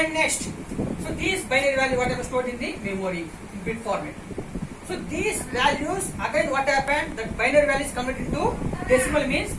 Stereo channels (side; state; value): both; identical; correlation 1.00